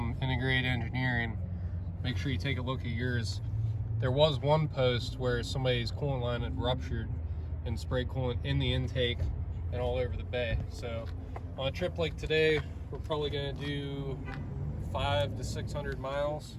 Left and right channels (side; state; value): both; identical; correlation 1.00